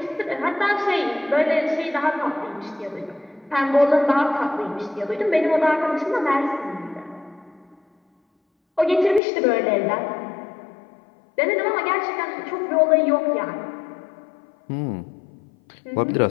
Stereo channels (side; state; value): right; drops out; at 9.2 s